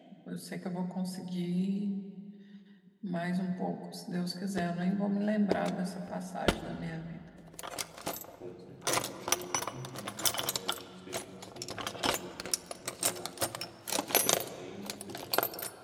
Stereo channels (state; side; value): identical; both; correlation 1.00